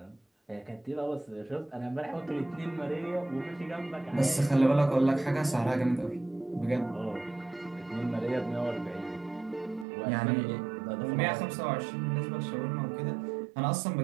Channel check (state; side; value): drops out; left; at 9.9 s